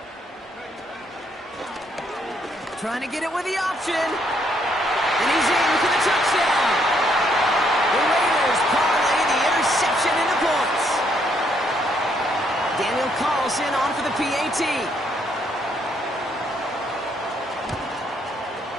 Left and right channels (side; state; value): both; normal; correlation 0.71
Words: Trying to get it with the option. And he's in for the touchdown. The Raiders parlay the interception into points. Daniel Carlson on for the PAT.